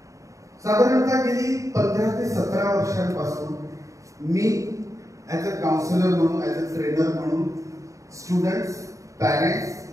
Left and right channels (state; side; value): late; left; 0.16 ms